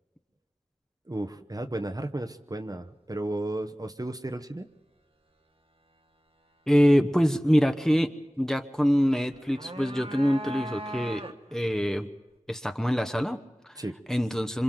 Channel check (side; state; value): both; normal; correlation 0.98